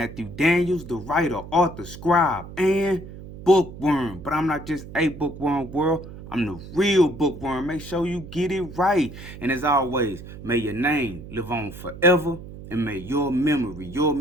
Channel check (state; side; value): noise; right; hum, 14 dB below the sound